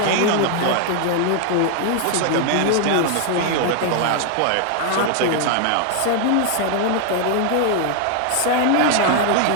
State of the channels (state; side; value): different; both; correlation 0.00